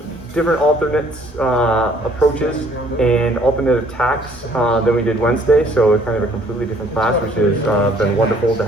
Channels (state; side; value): noise; left; rumble, 24 dB below the sound